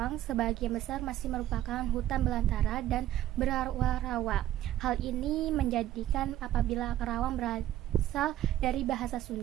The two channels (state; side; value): quieter; left; 13.1 dB